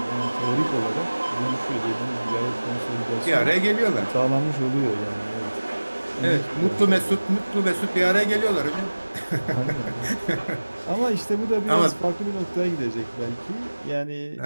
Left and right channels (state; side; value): inverted; both; correlation -1.00